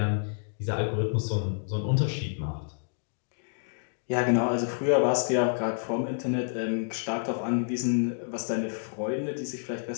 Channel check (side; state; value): right; silent; digital silence